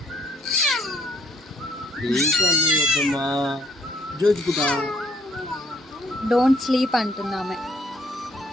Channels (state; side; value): normal; both; correlation 0.66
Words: ప్లీజ్ మమ్మీ వద్దమ్మా, జోజుకుంటా. డోంట్ స్లీప్ అంటుంది